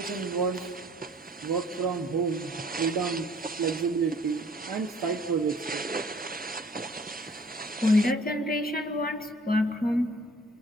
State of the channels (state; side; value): normal; both; correlation 0.54